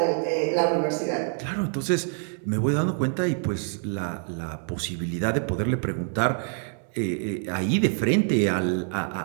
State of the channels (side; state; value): left; silent; 57 dB below the other